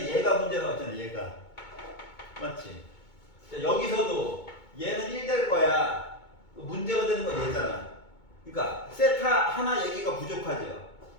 얘가 문제 나왔잖아. 얘가. 맞지? 자, 여기서도 얘는 1 될 거야. 문제가 되는 건 얘잖아. 그러니까 세타 하나 얘기가 부족하죠.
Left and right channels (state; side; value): late; right; 2.2 ms